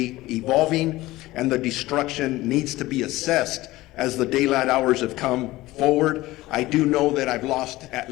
evolving and the destruction needs to be assessed as the daylight hours have come forward. I do know that I've lost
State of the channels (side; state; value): right; quieter; 18.2 dB